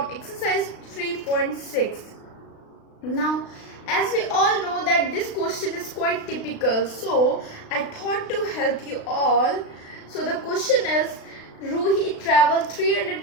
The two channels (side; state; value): right; late; 36 ms